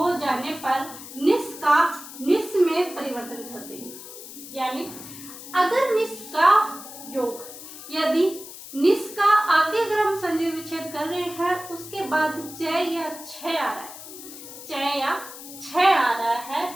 जाने पर निस का निस में परिवर्तन कर देंगे। यानी अगर निस का योग, यदि निस का आगे अगर हम संधि विच्छेद कर रहे हैं उसके बाद च या छ आ रहा है, च या छ आ रहा है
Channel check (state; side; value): noise; left; hiss, 14 dB below the sound